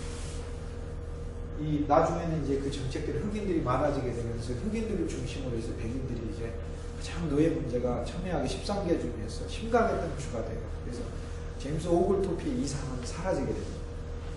이 나중에는 이제 그 정책들이 흑인들이 많아지게 되면서 흑인들을 중심으로 해서 백인들이 이제 가장 노예 문제가 첨예하게 13개 중에서 심각했던 주가 돼요. 그래서 제임스 오글토피의 이상은 사라지게 됩니다.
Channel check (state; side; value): identical; both; correlation 1.00